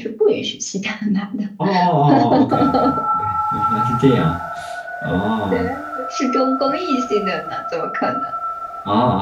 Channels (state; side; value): identical; both; correlation 1.00